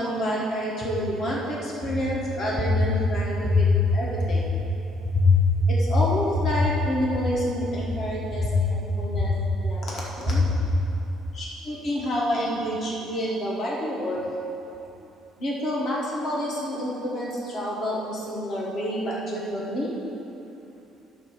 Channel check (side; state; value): both; normal; correlation 0.69